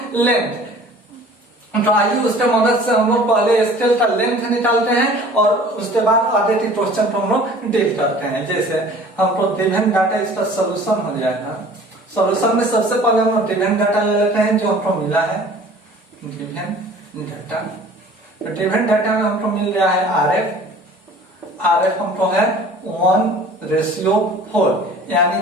length. तो आइए उसके मदद से हम लोग पहले स्केल का लेंथ निकालते हैं और उसके बाद आगे के क्वेश्चन को हम लोग डील करते हैं। जैसे हमको गिवन डाटा इसका सोल्यूशन हो जाएगा। सोल्यूशन में सबसे पहले हम लोग गिवन डाटा ले लेते हैं जो हमको मिला है, गिवन डाटा। तो गिवन डाटा में हमको मिल रहा है आरएफ हमको है 1:4 यानी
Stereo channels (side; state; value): both; normal; correlation 0.47